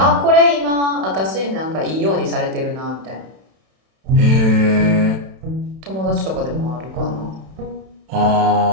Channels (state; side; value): late; left; 32 ms